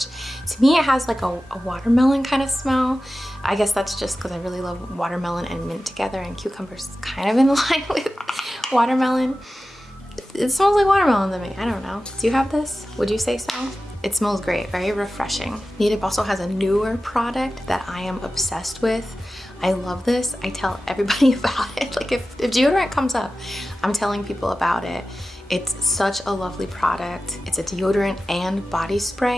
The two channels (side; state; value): both; normal; correlation 0.94